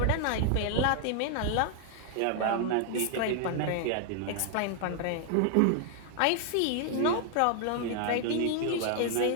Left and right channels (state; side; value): different; both; correlation 0.00